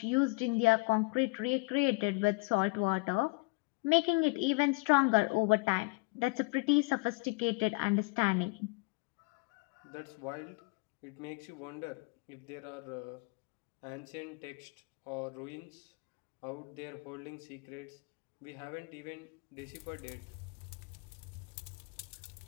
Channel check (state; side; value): quieter; right; 27.9 dB